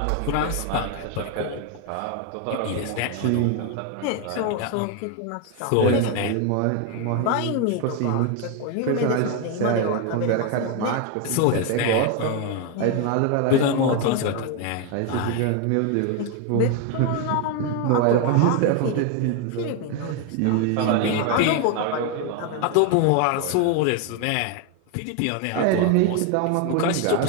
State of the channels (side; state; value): both; different; correlation 0.01